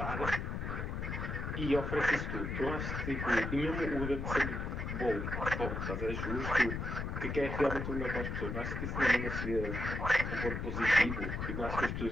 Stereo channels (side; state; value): left; noise; rumble, 3 dB below the sound